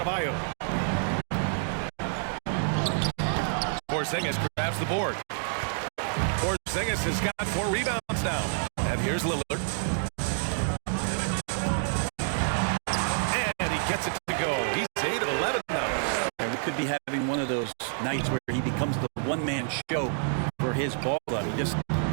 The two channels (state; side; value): silent; left; digital silence